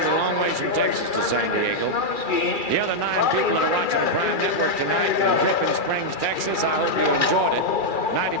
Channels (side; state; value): right; late; 2.4 ms